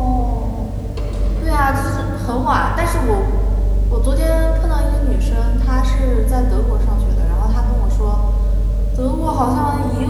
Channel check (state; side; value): identical; both; correlation 1.00